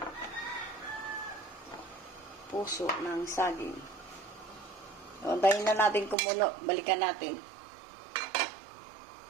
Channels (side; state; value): left; drops out; at 6.2 s